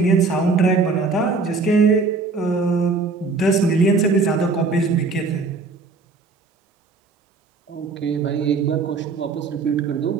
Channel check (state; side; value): quieter; left; 4.2 dB